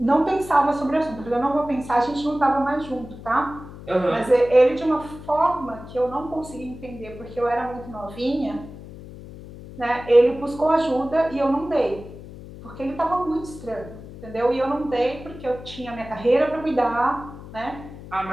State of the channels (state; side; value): noise; left; hum, 15 dB below the sound